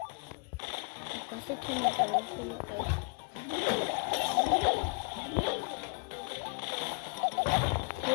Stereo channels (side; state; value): right; quieter; 35.6 dB